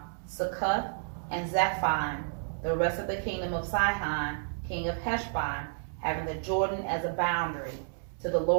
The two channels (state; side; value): silent; left; digital silence